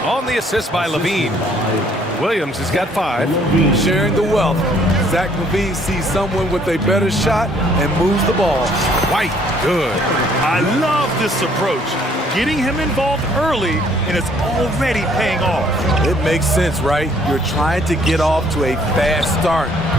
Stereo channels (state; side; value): normal; both; correlation 0.62